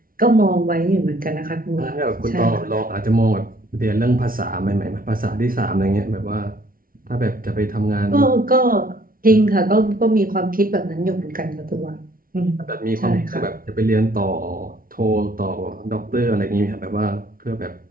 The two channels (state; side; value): late; left; 0.42 ms